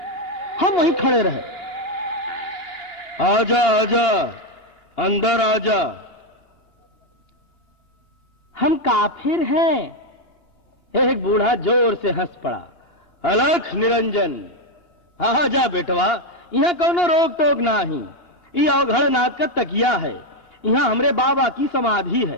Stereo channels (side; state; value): right; late; 2.8 ms